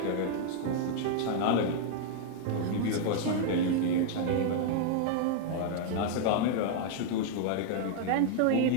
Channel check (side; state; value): both; different; correlation -0.01